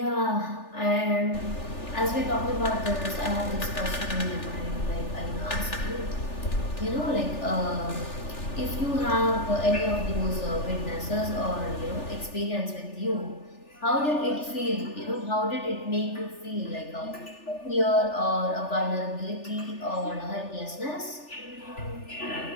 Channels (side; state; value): right; late; 3.4 ms